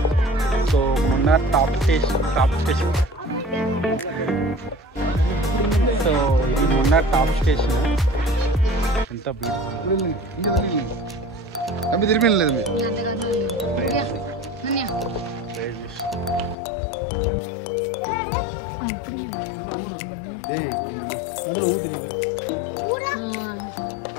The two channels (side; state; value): right; drops out; at 16.6 s